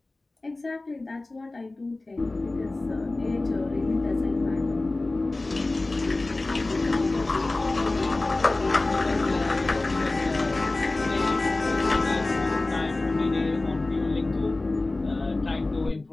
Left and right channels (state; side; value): quieter; right; 3.0 dB